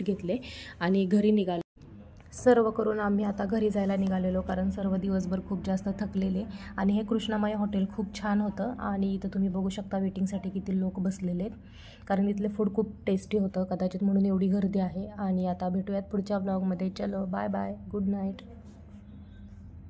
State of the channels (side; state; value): both; identical; correlation 1.00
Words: घेतले आणि घरी निघालो. सर्व करून आम्ही आता घरी जायला निघालेलो कारण सर्व दिवसभर खूप जास्त थकलेले. आणि हे कृष्णामाई हॉटेल खूप छान होतं आणि इथं तुम्ही बघू शकता वेटिंगसाठी किती लोक बसलेले आहेत कारण इथले फूड खूप टेस्टी होतं कदाचित म्हणून एवढी गर्दी आहे. आणि आता भेटूयात पुढच्या व्लॉगमध्ये. चलो बाय बाय, गुड नाईट.